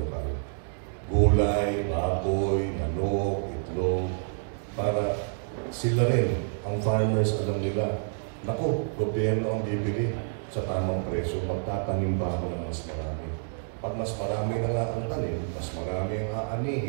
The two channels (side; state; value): left; silent; digital silence